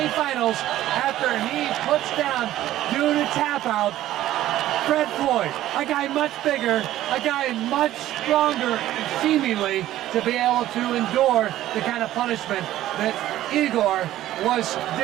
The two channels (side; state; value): left; quieter; 13.9 dB